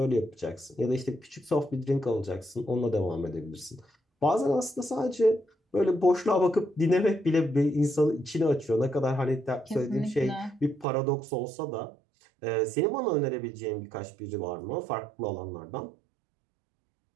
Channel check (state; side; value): drops out; left; at 10.9 s